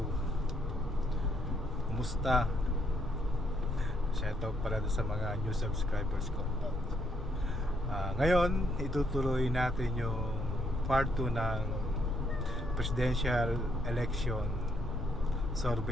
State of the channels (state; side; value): normal; both; correlation 0.73